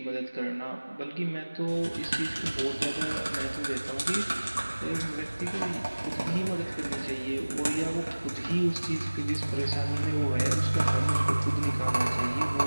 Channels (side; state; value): both; inverted; correlation -1.00